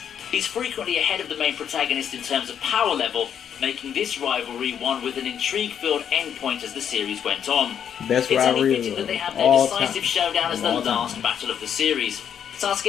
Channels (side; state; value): right; quieter; 8.6 dB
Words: He's frequently ahead of the main protagonist in terms of power level, making this rivalry one with an intrigue-filled endpoint as the series went on. Best it's only rivalry fitting that they have their all decisive time. showdown as the All last time. battle of the series.